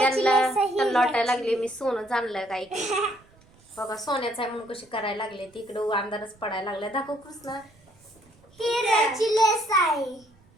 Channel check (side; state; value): right; noise; rumble, 30 dB below the sound